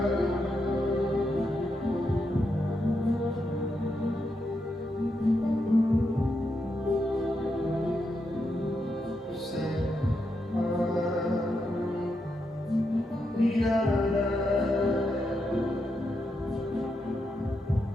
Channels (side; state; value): both; normal; correlation 0.83